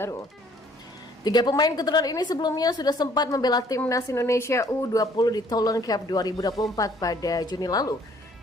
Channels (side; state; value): both; normal; correlation 0.60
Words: 3 pemain keturunan ini sebelumnya sudah sempat membela Timnas Indonesia U20 di Toulon Cup 2024 pada Juni lalu.